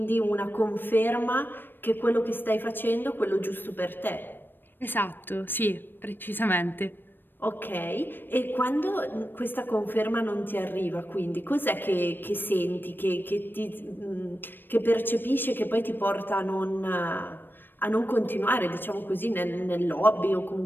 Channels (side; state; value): right; late; 0.095 ms